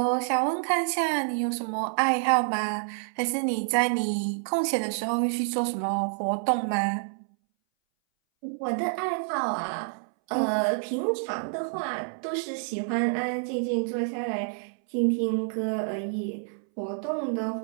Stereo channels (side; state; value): left; silent; 59 dB below the other